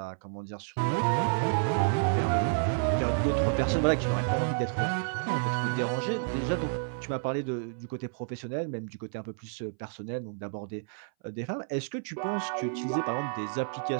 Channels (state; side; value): silent; left; 58 dB below the other